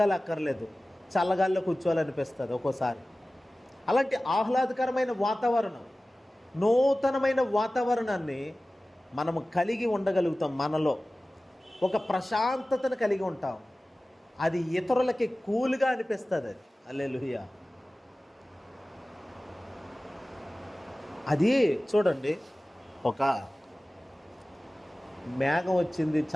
అక్కర్లేదు, చల్లగాల్లో కూర్చోవాలనిపిస్తుంది ఒక్కోసారి. అలాంటి ఆహ్లాదకరమైన వాతావరణం, నూతనమైన వాతావరణాన్ని మనము కలిగి ఉండగలుగుతాం. మనలో ఒక ప్రశాంతతను కలిగి ఉంటాం. అది ఇతరులకి కూల్గా అనిపిస్తుంది. అది హల్లెలూయా. అది చూడండి, ఒక మేఘం వచ్చింది,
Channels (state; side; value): normal; both; correlation 0.97